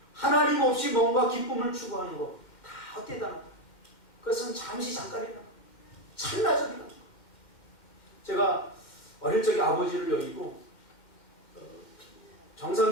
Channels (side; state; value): right; late; 2.1 ms